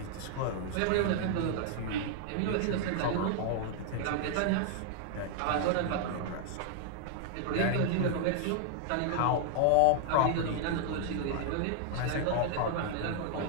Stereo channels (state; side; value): different; both; correlation 0.00